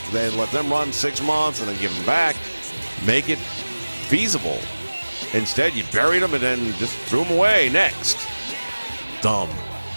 then let them run 6 months, and then give them back. Make it feasible. Instead, you buried them and then just threw them away. Next. Dumb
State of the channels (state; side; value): inverted; both; correlation -1.00